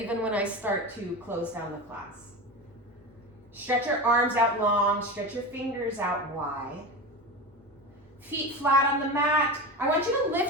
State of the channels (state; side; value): normal; both; correlation 0.25